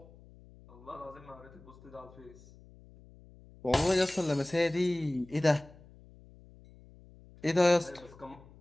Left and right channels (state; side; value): noise; left; hum, 23 dB below the sound